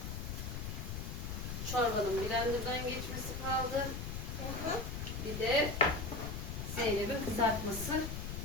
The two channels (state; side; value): noise; left; rumble, 5 dB below the sound